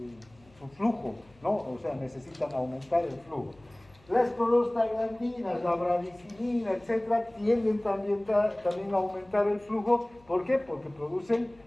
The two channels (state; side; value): noise; left; hum, 29 dB below the sound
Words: su flujo, ¿no? O sea, necesitan aumentar el flujo. Las prostaglandinas, la bradicinina, etcétera, tienden también a aumentar el flujo. ¿Por qué? Porque producen